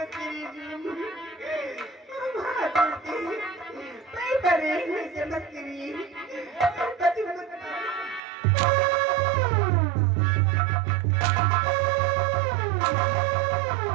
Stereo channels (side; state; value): left; drops out; at 8.2 s